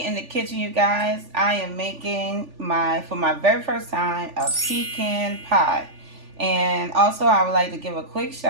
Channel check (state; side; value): late; left; 3.4 ms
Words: in the kitchen, you guys, I am making for my very first time, a pecan pie. And also I would like to give a quick